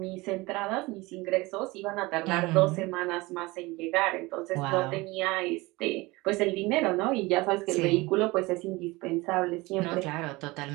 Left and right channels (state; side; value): quieter; left; 22.4 dB